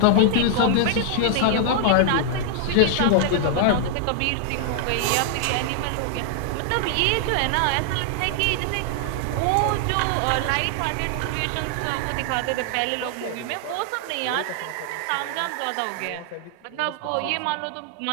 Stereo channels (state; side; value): different; both; correlation 0.00